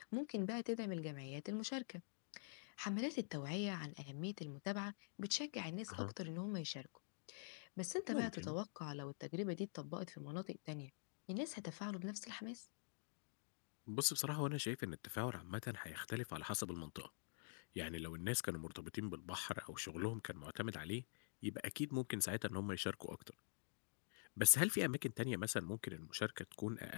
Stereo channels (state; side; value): silent; right; digital silence